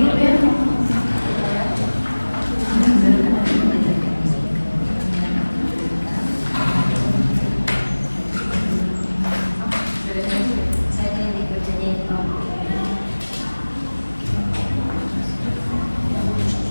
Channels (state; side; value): inverted; both; correlation -1.00